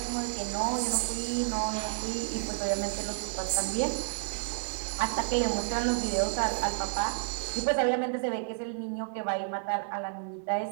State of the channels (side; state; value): left; silent; digital silence